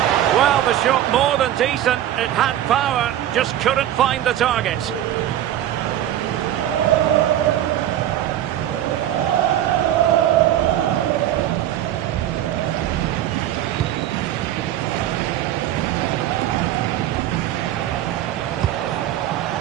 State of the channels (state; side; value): quieter; left; 12.1 dB